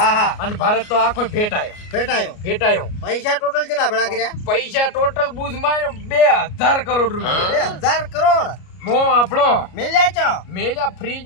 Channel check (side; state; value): right; late; 33 ms